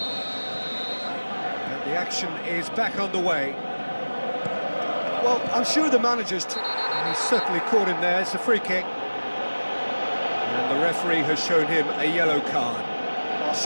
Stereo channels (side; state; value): both; inverted; correlation -1.00